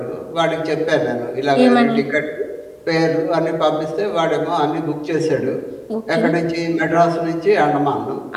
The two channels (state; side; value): identical; both; correlation 1.00